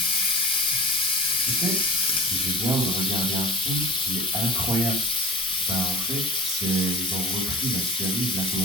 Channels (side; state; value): both; normal; correlation 0.35